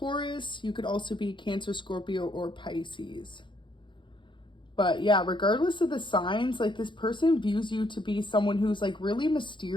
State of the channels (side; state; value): right; late; 0.23 ms